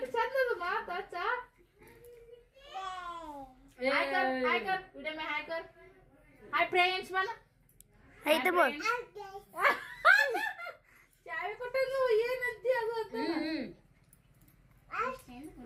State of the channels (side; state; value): both; identical; correlation 1.00